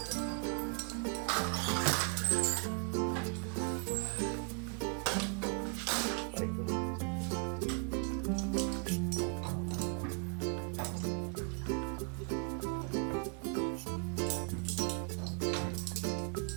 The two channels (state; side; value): quieter; left; 37.2 dB